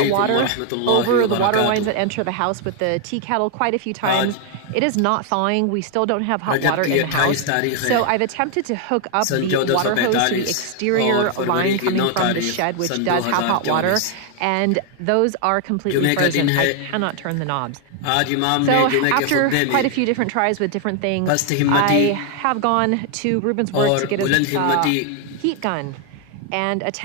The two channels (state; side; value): different; both; correlation 0.00